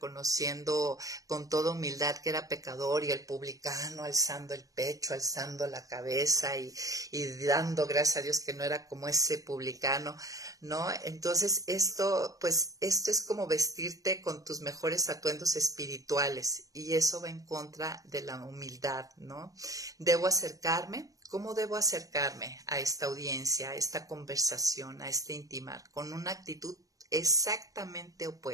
con toda humildad que era pecador, y el publicano alzando el pecho, alzando la cabeza y dando gracias a Dios que no era como ese publicano, ¿no? Entonces esto es como vestirte con tus mejores atuendos espirituales, y eso va en contra de la humildad, ¿no? Debo acercarme. ¿Cómo debo acercarme a esta audiencia, a esta conversación, a este intimar? Con una actitud exactamente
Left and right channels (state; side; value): late; left; 0.17 ms